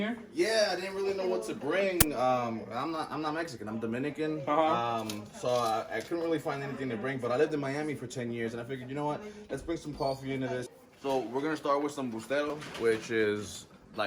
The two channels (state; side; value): identical; both; correlation 1.00